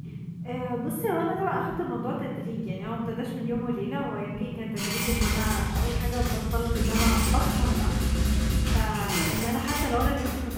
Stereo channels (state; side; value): identical; both; correlation 1.00